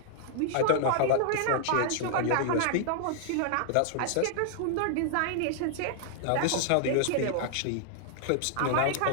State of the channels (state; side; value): different; both; correlation 0.00